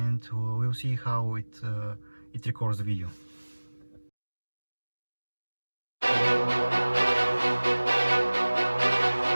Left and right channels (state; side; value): inverted; both; correlation -1.00